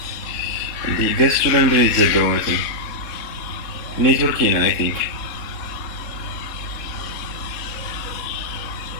እንዴ ገሱ ለምንድን ነው የተዘጋው? ማለት ነው ኔትወርክ ነው አይ ቲንክ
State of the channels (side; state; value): right; late; 3.7 ms